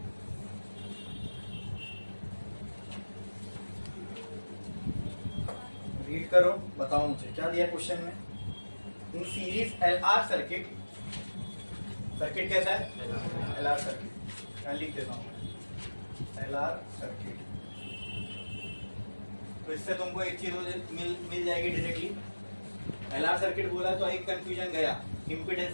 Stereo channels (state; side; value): inverted; both; correlation -1.00